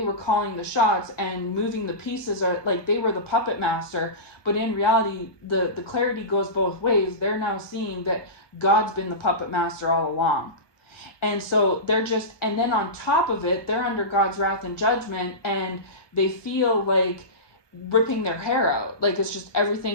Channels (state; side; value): late; right; 1.2 ms